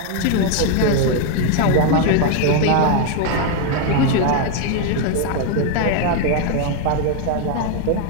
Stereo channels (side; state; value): both; different; correlation 0.01